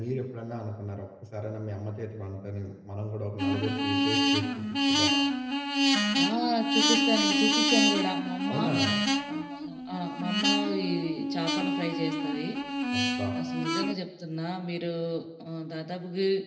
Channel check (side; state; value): both; identical; correlation 1.00